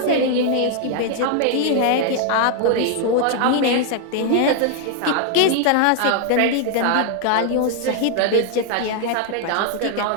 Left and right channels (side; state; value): both; different; correlation 0.00